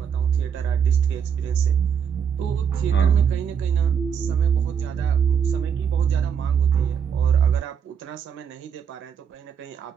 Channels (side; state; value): left; quieter; 7.5 dB